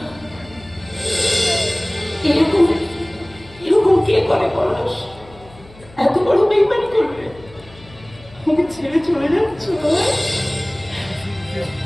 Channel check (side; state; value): left; noise; hum, 22 dB below the sound